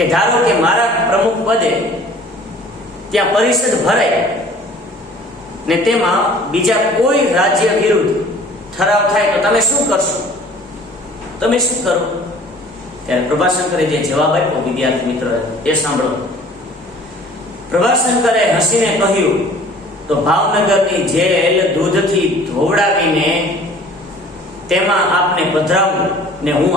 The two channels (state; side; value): normal; both; correlation 0.50